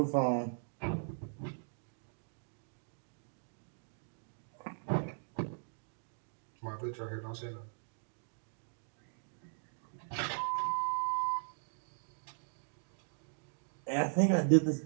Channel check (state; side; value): silent; left; digital silence